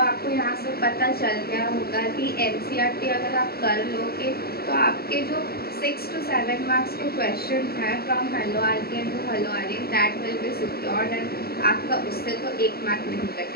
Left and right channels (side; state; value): right; late; 0.45 ms